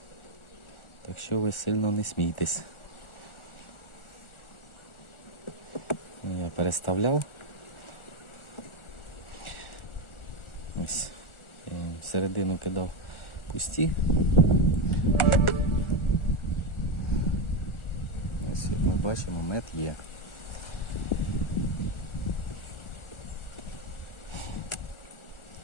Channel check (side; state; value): right; late; 1.4 ms